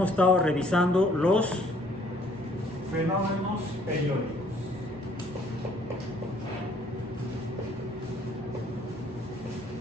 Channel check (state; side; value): normal; both; correlation 0.62